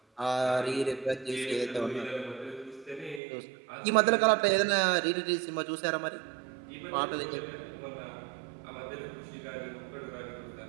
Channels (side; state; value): left; drops out; at 3.2 s